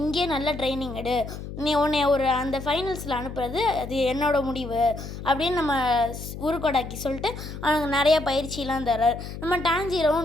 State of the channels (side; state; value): left; noise; hum, 10 dB below the sound